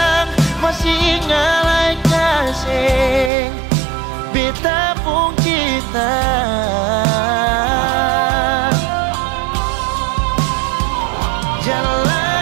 masih ingat kasih beta pun kita.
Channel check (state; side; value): drops out; left; at 3.3 s